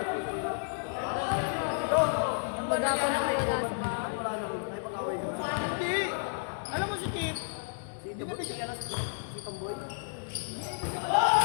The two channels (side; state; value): right; silent; 57 dB below the other